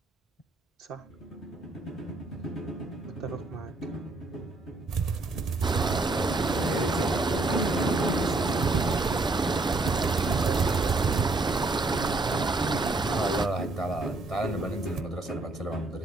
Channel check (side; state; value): left; quieter; 3.1 dB